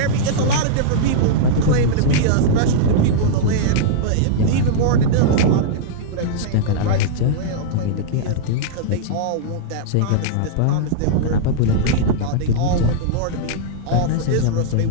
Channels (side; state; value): both; different; correlation -0.02